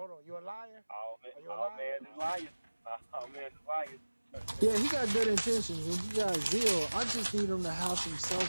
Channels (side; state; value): both; inverted; correlation -1.00